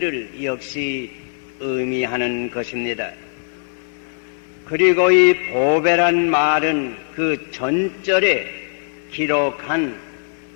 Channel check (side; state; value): right; silent; digital silence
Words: 역시 의미하는 것입니다. 그리고 이 보배란 말은 그 전절에 기록한